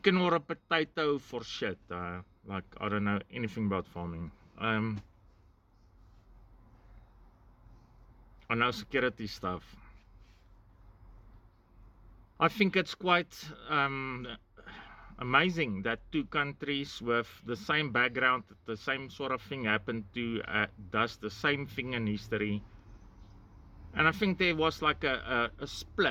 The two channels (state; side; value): identical; both; correlation 1.00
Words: or a potato for shit. Like, I don't know anything about farming. I know security stuff. I think it's quite amazing that two countries with the same background, the same sort of thing happened to, does the same thing in history. And I think there was like a